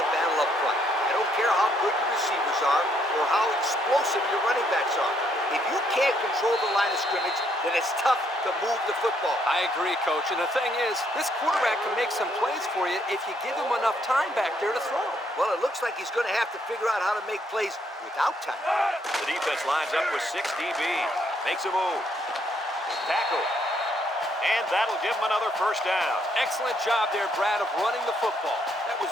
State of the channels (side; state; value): both; normal; correlation 0.71